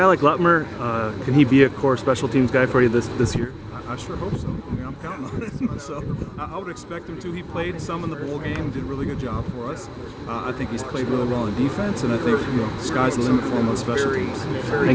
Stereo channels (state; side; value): identical; both; correlation 1.00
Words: like Lutmer, can he be a core special teams guy for you this year? I sure hope so. I mean, I'm counting on it. So I would expect him to. He played some in the bowl game, did a really good job for us. I think he's played really well in defense, and I think, you know, the sky's the limit for him on special teams.